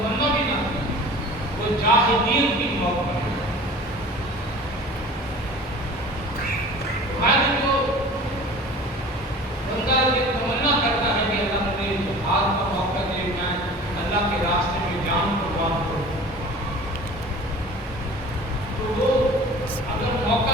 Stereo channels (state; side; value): normal; both; correlation 0.42